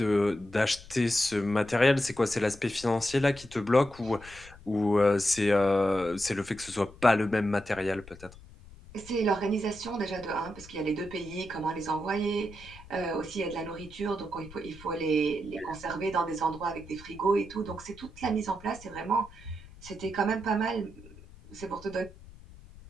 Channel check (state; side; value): noise; left; rumble, 20 dB below the sound